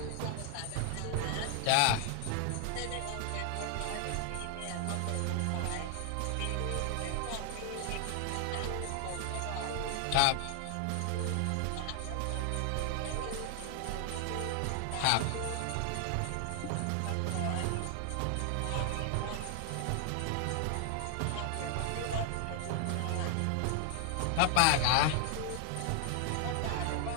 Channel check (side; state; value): both; different; correlation 0.00